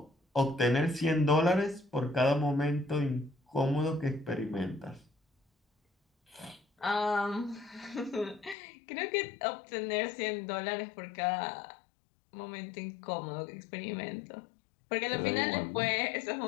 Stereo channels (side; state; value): right; drops out; at 8.6 s